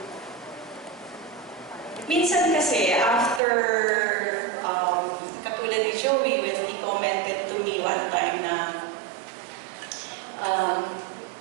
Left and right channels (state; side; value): drops out; left; at 3.4 s